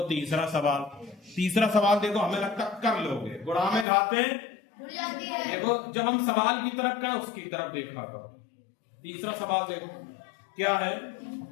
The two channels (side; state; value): right; drops out; at 3.9 s